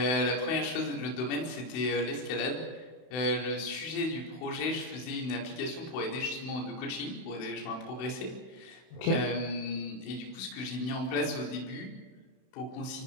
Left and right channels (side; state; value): right; late; 31 ms